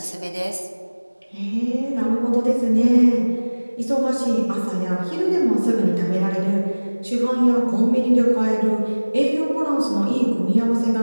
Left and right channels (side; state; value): both; inverted; correlation -1.00